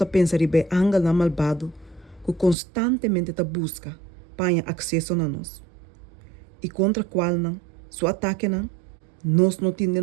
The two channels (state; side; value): drops out; left; at 2.6 s